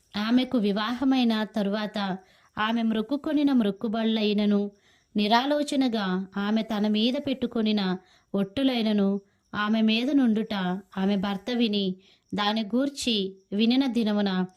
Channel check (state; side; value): identical; both; correlation 1.00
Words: ఆమెకు వివాహమైన తరువాత ఆమె మ్రొక్కుకొనిన మ్రొక్కుబళ్ళైనను నిరాలోచనగా ఆమె తన మీద పెట్టుకొనిన ఒట్టులైనను ఆమె మీద నుండుట ఆమె భర్త విని దాని గూర్చి వినిన దినమున